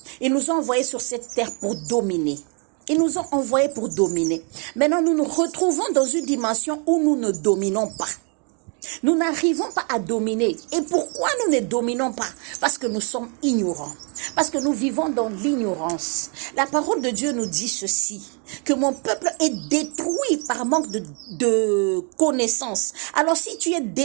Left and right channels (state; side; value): quieter; left; 38.0 dB